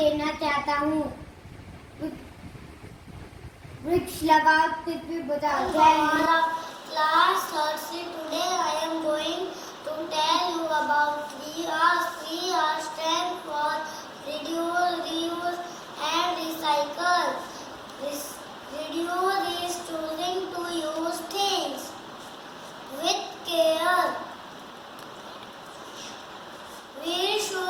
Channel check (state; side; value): identical; both; correlation 1.00